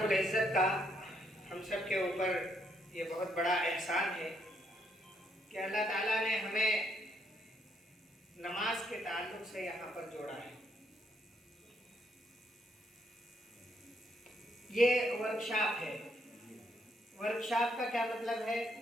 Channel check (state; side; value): normal; both; correlation 0.74